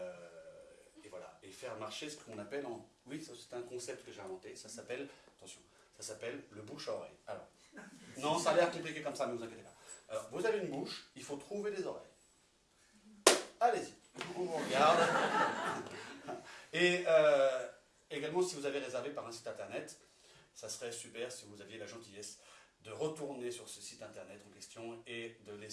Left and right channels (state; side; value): identical; both; correlation 1.00